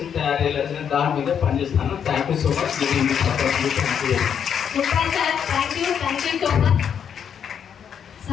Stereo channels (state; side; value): quieter; right; 8.0 dB